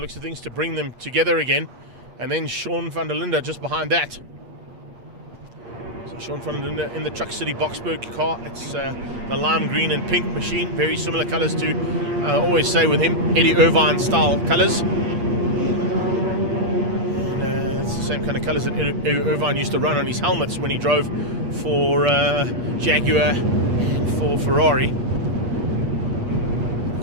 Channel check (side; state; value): left; late; 8.5 ms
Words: of things, to bring them together again. And then Sean van der Linde just behind that. So Sean van der Linde in the Truck City Boksburg car. It's the lime green and pink machine. Very similar colors to, I always say with him, Eddie Irvine style colors. Same kind of colours that Irvine used to run on his helmets when he drove for Jaguar and for Ferrari. Of